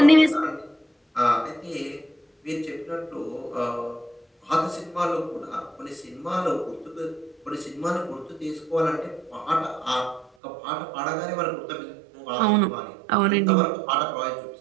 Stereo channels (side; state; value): left; drops out; at 10.3 s